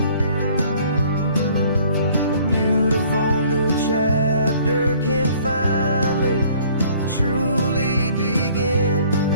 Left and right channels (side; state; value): both; inverted; correlation -0.56